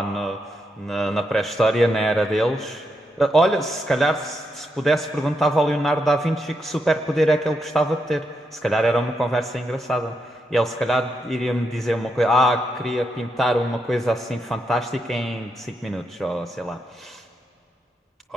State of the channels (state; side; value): normal; both; correlation 0.82